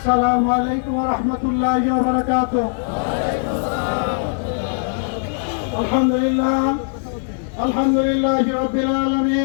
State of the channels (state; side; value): silent; right; 59 dB below the other